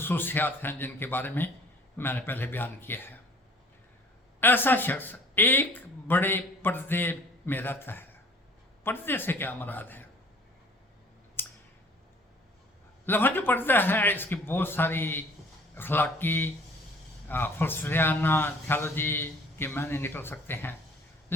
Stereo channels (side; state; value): both; normal; correlation 0.52